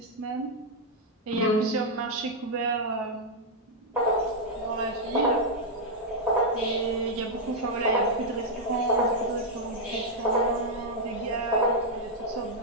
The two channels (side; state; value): both; normal; correlation -0.03